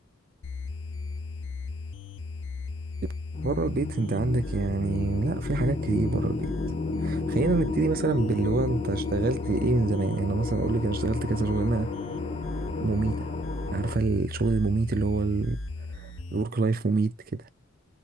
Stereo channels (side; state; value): both; normal; correlation 0.68